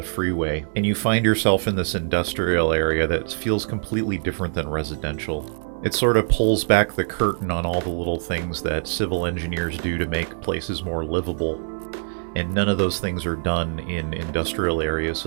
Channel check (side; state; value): left; silent; digital silence